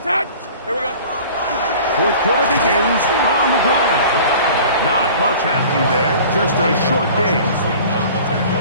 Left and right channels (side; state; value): both; inverted; correlation -0.44